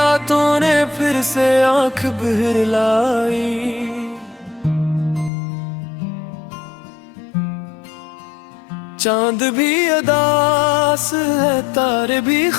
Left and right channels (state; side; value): drops out; right; at 5.3 s